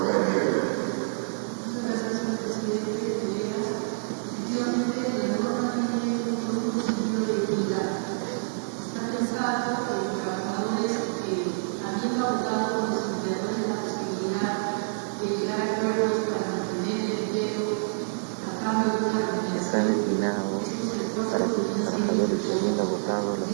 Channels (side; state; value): left; silent; digital silence